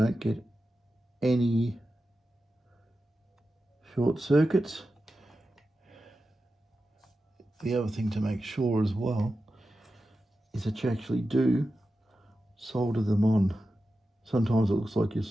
get any short circuits. The other thing to make sure as well is that you actually do solder them on. Sometimes it looks like you're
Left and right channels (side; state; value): both; normal; correlation 0.92